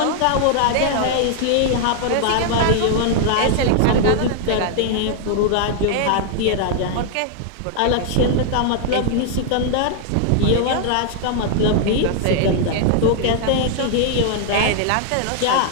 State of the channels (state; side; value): different; both; correlation 0.00